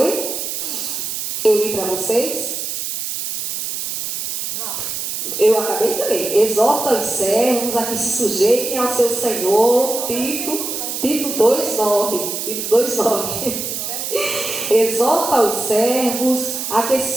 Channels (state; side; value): noise; right; hiss, 4 dB below the sound